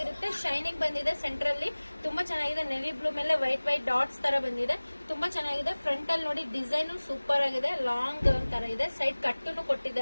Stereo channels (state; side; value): inverted; both; correlation -1.00